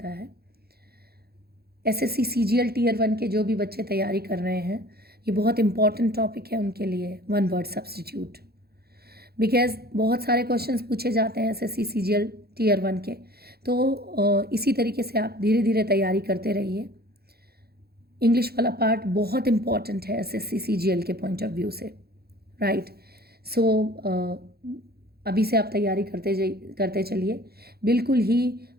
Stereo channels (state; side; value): late; left; 0.46 ms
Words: है। SSC CGL Tier 1 के जो भी बच्चे तैयारी कर रहे हैं, ये बहुत इंपॉर्टेंट टॉपिक है उनके लिए, वन वर्ड सब्सटीट्यूट। बिकॉज बहुत सारे क्वेश्चंस पूछे जाते हैं SSC CGL Tier 1 के, तो इसी तरीके से आप धीरे धीरे तैयारी करते रहिए। इंग्लिश वाला पार्ट बहुत इंपॉर्टेंट है SSC CGL के पॉइंट ऑफ व्यू से, राइट। सो अभी से आप तैयारी करते चलिए, बिल्कुल ही